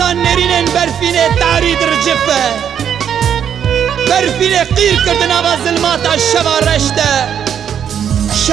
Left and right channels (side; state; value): left; quieter; 8.7 dB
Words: nêrînên berfînê tarî dircife Berfînê qîr kirdin ava zilmata şeva reş de